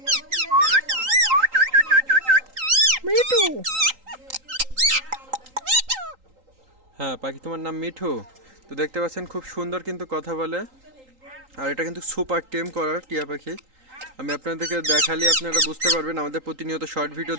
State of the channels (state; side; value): late; left; 3.8 ms